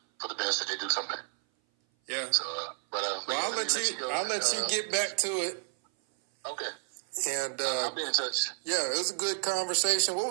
for the best that they do something. Yeah. So, I'll let you get back to it. Okay. And I'll be in touch. Yeah, it was a good conversation. What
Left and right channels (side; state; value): left; silent; 56 dB below the other